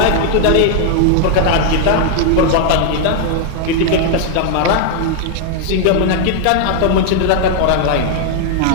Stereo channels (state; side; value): different; both; correlation 0.00